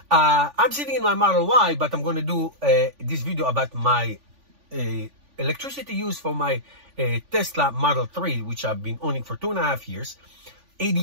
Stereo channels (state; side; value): late; left; 3.5 ms